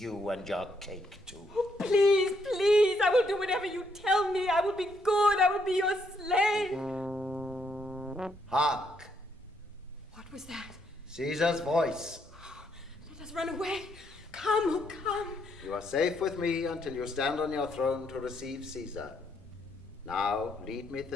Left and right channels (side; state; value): both; normal; correlation 0.74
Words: and your cake too. Oh, please, I will do whatever you tell me. I will be good. I will be your slave. Hark! What was that? Caesar's voice. Let us run away. Come. You are safe with me until you stand on your throne to receive Caesar. Now, lead me